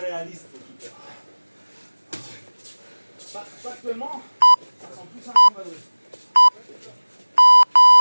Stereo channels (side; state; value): both; inverted; correlation -1.00